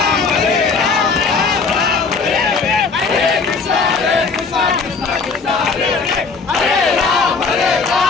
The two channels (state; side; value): quieter; right; 4.7 dB